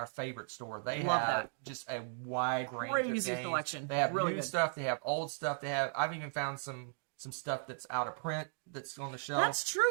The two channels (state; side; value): silent; left; digital silence